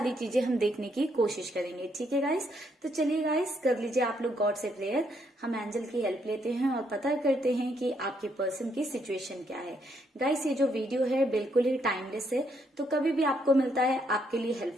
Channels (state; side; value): normal; both; correlation 0.73